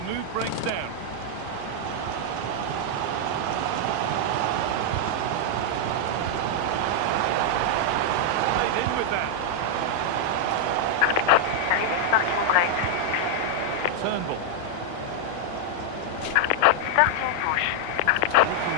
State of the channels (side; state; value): both; different; correlation -0.01